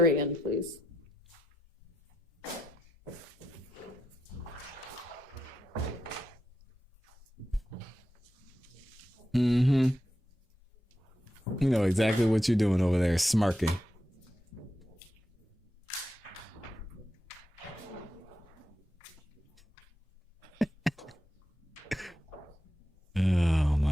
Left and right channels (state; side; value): normal; both; correlation 0.86